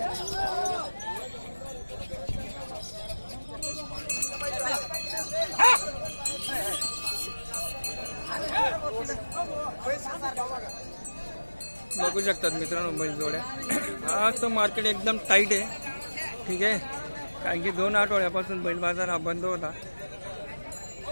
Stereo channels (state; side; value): inverted; both; correlation -1.00